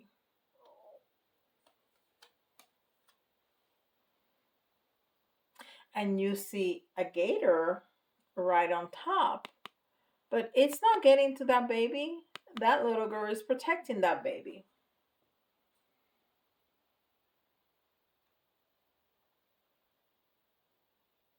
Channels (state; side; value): identical; both; correlation 1.00